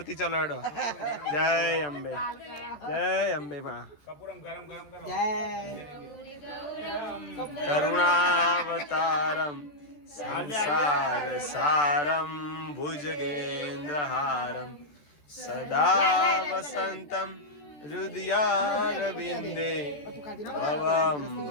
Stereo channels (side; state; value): right; late; 14 ms